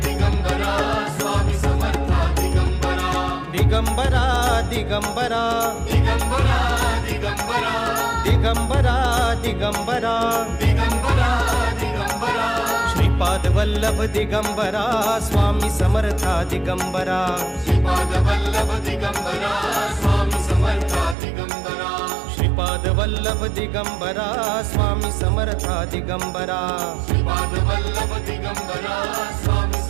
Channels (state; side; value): drops out; left; at 21.2 s